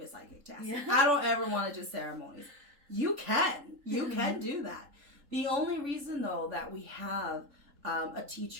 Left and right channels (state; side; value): late; left; 3.7 ms